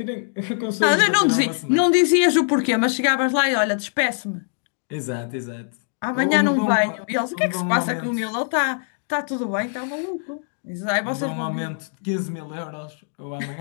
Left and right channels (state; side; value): silent; right; 64 dB below the other